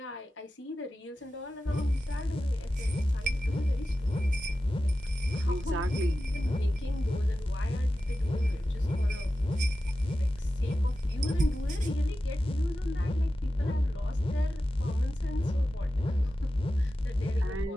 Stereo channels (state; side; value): normal; both; correlation 0.93